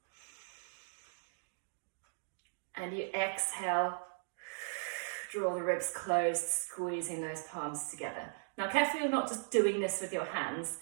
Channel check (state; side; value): silent; left; digital silence